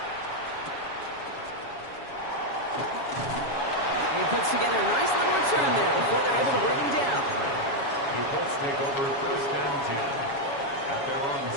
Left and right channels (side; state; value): right; late; 7.2 ms